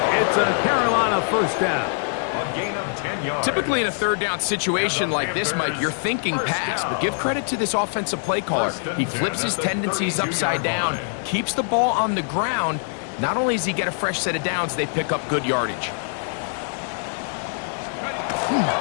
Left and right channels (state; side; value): silent; right; digital silence